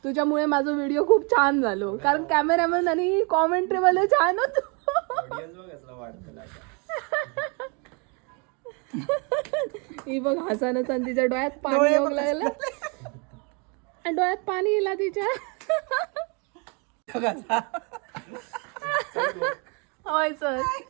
तुझ्यामुळे माझा व्हिडिओ खूप छान झालो कारण कॅमेरामॅन आणि कॉमेंट्री वाले छान होतो. ही बघ हसानच आणि तिच्या डोळ्यात पाणी येऊ लागलं. आणि डोळ्यात पाणी येला तिच्या. होय सर.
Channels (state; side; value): quieter; left; 33.8 dB